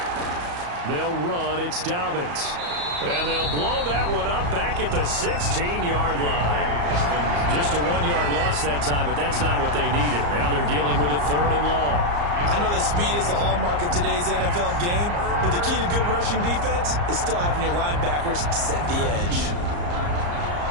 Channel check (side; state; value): left; late; 34 ms